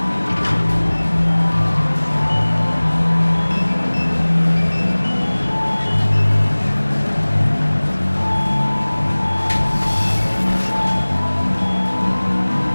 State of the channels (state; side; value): inverted; both; correlation -1.00